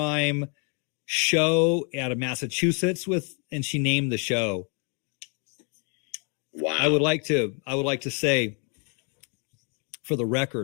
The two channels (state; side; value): quieter; right; 38.8 dB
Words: show out of Massachusetts and she named the show. Wow. I would like to say, for the